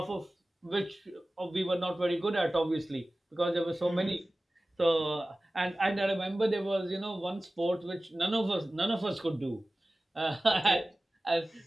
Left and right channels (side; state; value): both; normal; correlation 0.97